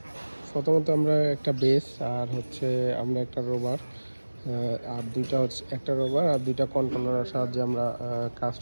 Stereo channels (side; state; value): both; inverted; correlation -1.00